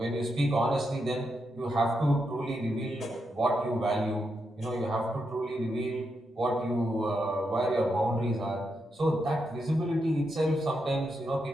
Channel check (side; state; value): both; normal; correlation 0.84